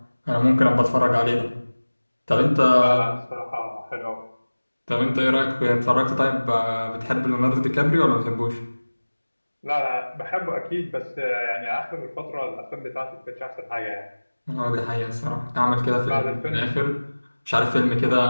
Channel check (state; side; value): inverted; both; correlation -1.00